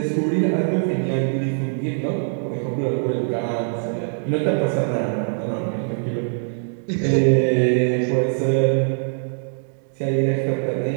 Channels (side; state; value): left; silent; digital silence